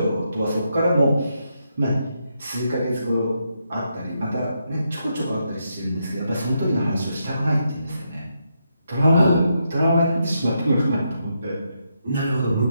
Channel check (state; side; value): inverted; both; correlation -0.81